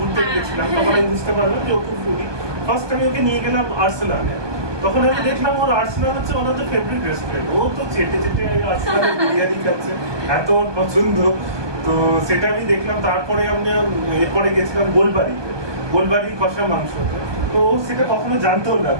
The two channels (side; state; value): left; late; 1.2 ms